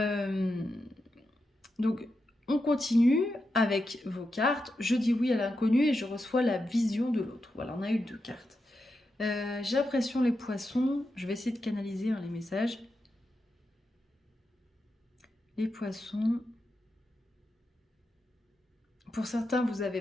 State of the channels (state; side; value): normal; both; correlation 0.87